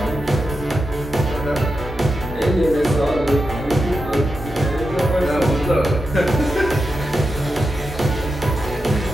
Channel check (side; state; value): both; normal; correlation 0.89